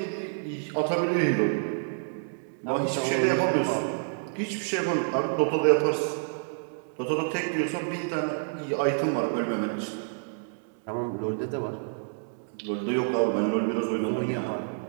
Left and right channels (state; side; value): silent; left; digital silence